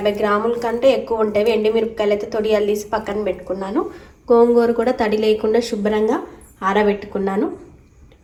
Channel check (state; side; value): identical; both; correlation 1.00